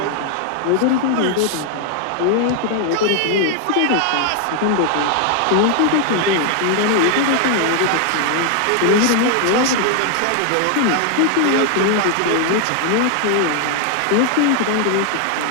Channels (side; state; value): both; different; correlation 0.00